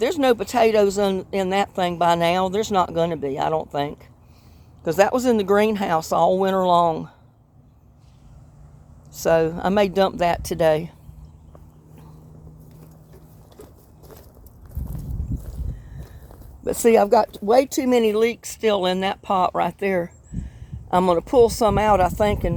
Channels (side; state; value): both; identical; correlation 1.00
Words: no potatoes in that thing by now, there's not going to be, I don't think. Because that was in the greenhouse all winter long. So I may dump that today. But see, I've got way too many leeks still in that pot right there. I'm going to pull some out, I think,